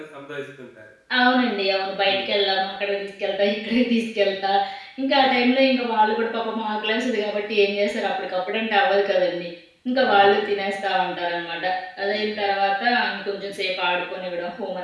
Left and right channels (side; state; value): both; identical; correlation 1.00